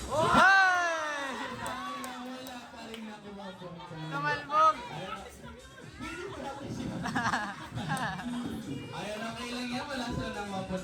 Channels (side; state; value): both; identical; correlation 1.00